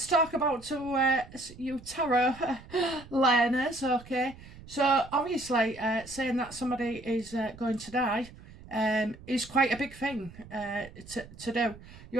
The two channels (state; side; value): noise; right; rumble, 19 dB below the sound